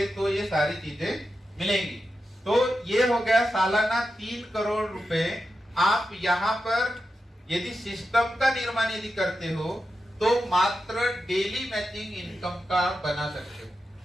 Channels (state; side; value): normal; both; correlation 0.89